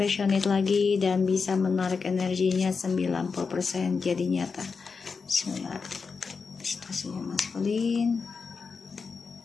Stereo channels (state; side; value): quieter; right; 5.1 dB